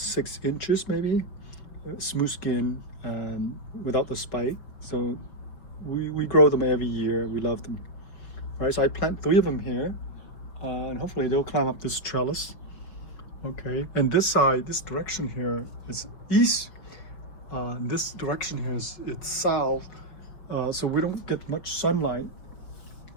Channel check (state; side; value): late; right; 5.8 ms